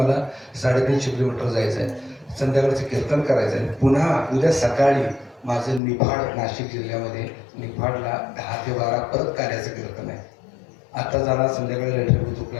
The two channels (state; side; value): drops out; right; at 5.8 s